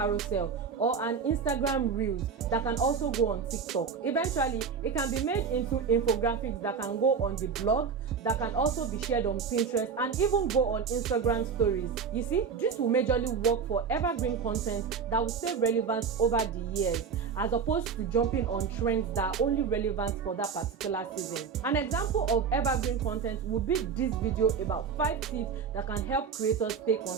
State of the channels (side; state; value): left; quieter; 6.0 dB